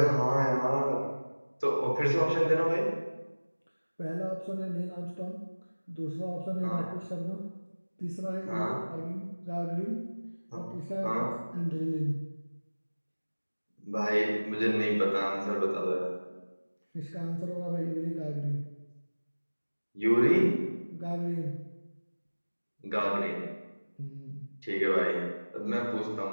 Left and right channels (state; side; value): inverted; both; correlation -1.00